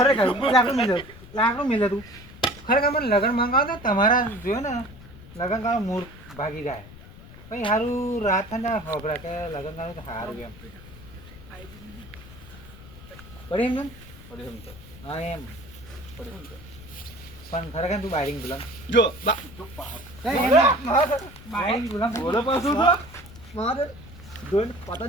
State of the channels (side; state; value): left; noise; rumble, 18 dB below the sound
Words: લાકડું મિલે તું ખરેખર મને લગ્ન મંગાવો તો તમારા જોયો ને લગ્ન કરવાનું મૂળ ભાગી જાય પછી સારું રાત થાય ને ખબર કે લગ્ન કરવાનું તો સારું એમ પડી એમ હા એમ પણ ખરેખર તું બાયરિંગ ગુલામ જો બાયરિંગ ગુલામ બોલો પાછું તો મારે જોઈને પતા